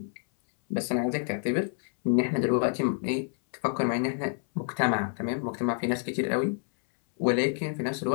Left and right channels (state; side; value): silent; right; 59 dB below the other